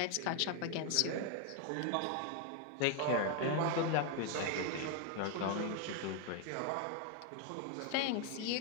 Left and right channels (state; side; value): different; both; correlation 0.01